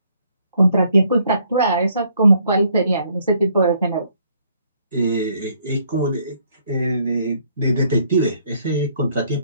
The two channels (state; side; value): inverted; both; correlation -0.66